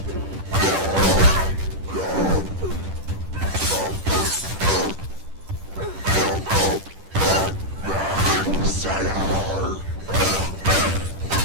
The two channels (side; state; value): left; late; 10 ms